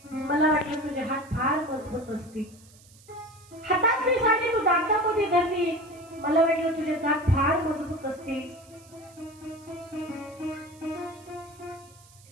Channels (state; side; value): noise; right; hiss, 25 dB below the sound